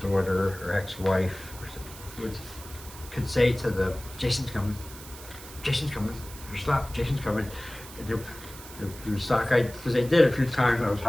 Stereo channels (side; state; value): right; noise; hiss, 16 dB below the sound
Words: daughter or ex-wife could say to them, Jason's coming, or stop, Jason's coming. And they would stop, because they did a few times. I was